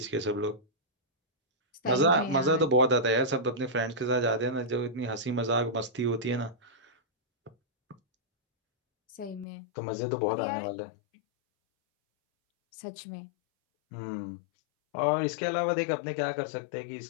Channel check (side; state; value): right; drops out; at 9.5 s